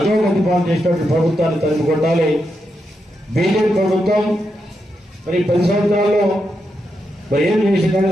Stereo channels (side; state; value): both; normal; correlation 0.84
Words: పాలు చేసినటువంటి ప్రభుత్వాన్ని తరిమి కొట్టాలి. బీజేపీ ప్రభుత్వం మరి 10 సంవత్సరాల్లో మరి ఏం చేసిందని